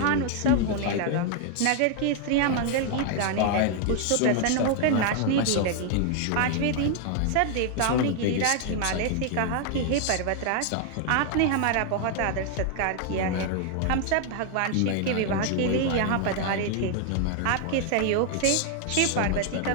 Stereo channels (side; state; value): both; different; correlation 0.00